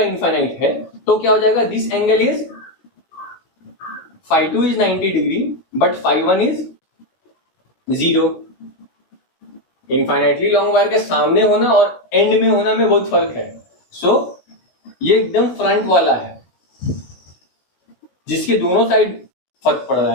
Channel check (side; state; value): right; late; 17 ms